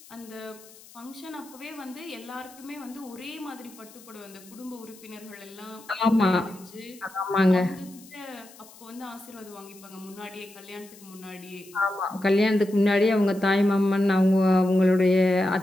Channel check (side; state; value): left; noise; hiss, 22 dB below the sound